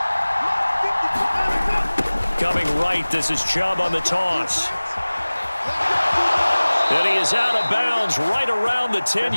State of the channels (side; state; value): both; inverted; correlation -1.00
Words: Coming right, this is Chubb on the toss. And he is out of bounds right around the